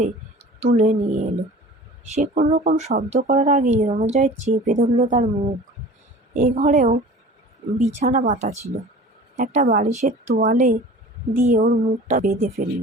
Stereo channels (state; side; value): normal; both; correlation 0.42